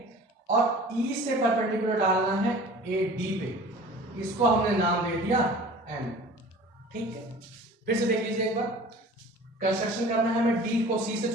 और E से परपेंडिकुलर डालना है AD पे, इसको हमने नाम दे दिया M। ठीक है, फिर से देख लीजिए एक बार। कंस्ट्रक्शन करना है, हमें D को C से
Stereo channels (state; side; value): normal; both; correlation 0.43